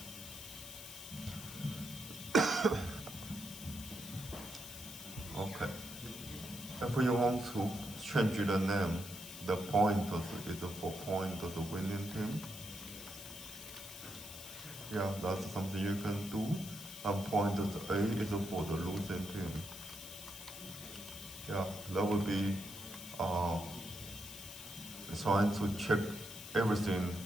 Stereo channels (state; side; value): noise; left; hiss, 11 dB below the sound